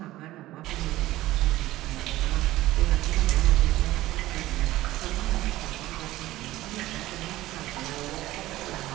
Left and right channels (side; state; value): left; quieter; 16.3 dB